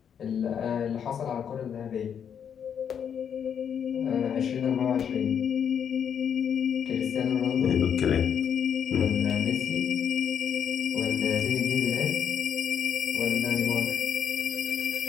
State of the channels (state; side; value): quieter; right; 8.1 dB